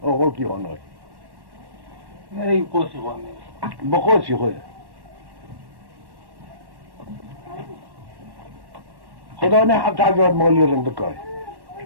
او غوكي هونوي مري قوسي غوامي بقوسي خويا خدا نه حتى عجوات مولي رندكاي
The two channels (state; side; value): late; left; 1.1 ms